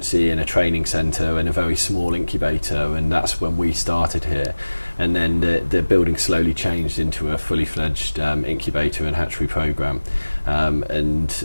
and a training centre and a very small incubator, and that's when we started here. And then the building slowly changed into a fully fledged incubator and hatchery programme.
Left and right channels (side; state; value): both; inverted; correlation -1.00